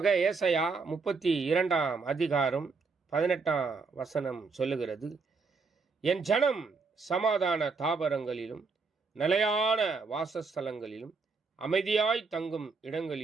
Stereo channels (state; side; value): quieter; left; 4.5 dB